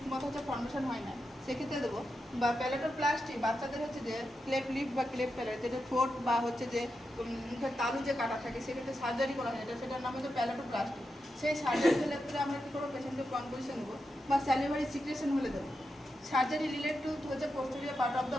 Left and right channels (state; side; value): normal; both; correlation 0.87